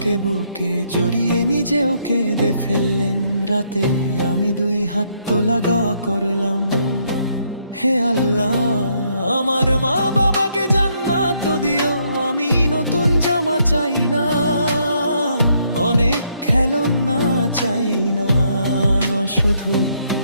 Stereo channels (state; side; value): inverted; both; correlation -0.72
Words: বুকে জড়িয়ে নিজেও কেঁদে ফেললেন। রাতে আমি দুই হাত লাগা করলাম, হে আল্লাহ আমার মা বাবাকে জান্নাত দিও। আমি নতুন জামা চাই না, অনেক খেলনা চাই না, শুধু